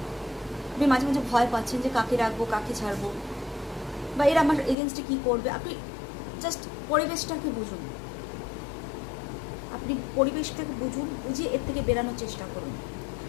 আপনি মাঝে মাঝে ভয় পাচ্ছেন যে কাকে রাখবো, কাকে ছাড়বো, বা এরা আমার এগেনস্টে কী করবে। আপনি জাস্ট পরিবেশটাকে বুঝুন, আপনি পরিবেশটাকে বুঝুন, বুঝিয়ে এর থেকে বেরানোর চেষ্টা করুন।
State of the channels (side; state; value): right; drops out; at 4.8 s